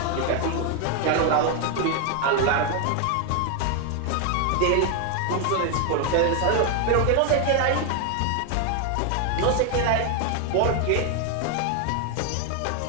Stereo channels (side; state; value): both; different; correlation 0.01